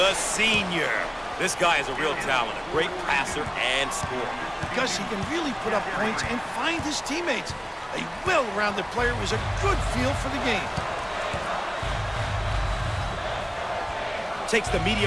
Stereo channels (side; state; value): both; identical; correlation 1.00